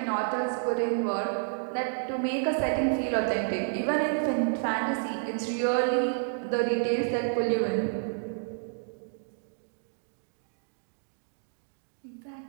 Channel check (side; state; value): left; silent; digital silence